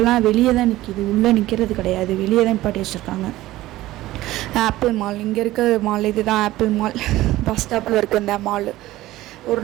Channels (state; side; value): quieter; left; 16.4 dB